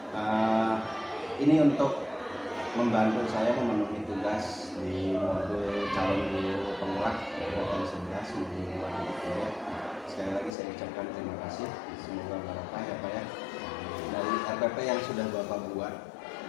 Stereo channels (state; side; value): drops out; right; at 10.6 s